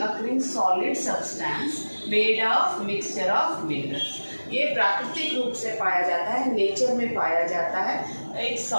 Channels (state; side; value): inverted; both; correlation -1.00